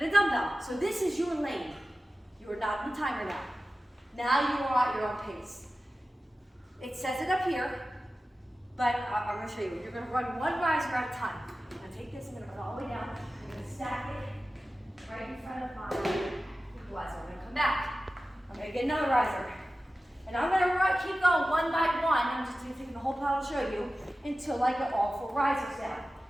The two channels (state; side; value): normal; both; correlation 0.95